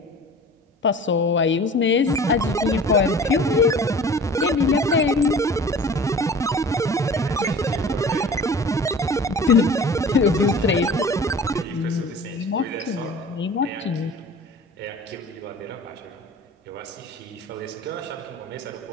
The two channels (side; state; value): both; normal; correlation 0.42